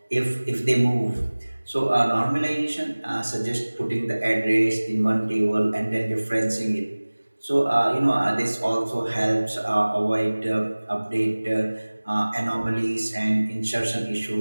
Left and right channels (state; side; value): inverted; both; correlation -1.00